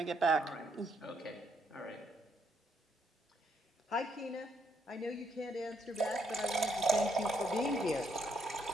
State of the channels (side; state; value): both; normal; correlation 0.73